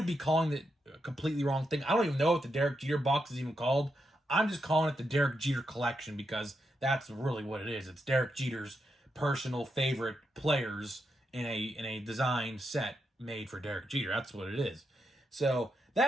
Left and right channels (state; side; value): normal; both; correlation 0.84